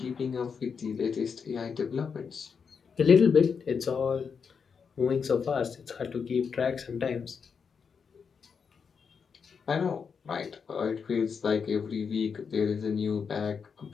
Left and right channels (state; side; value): quieter; right; 6.1 dB